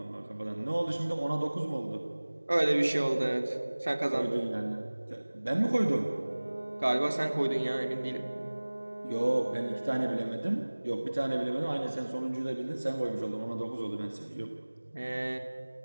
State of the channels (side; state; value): both; inverted; correlation -1.00